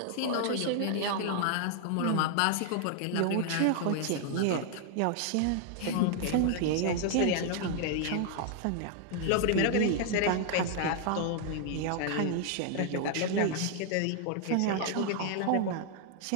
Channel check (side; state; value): both; different; correlation 0.00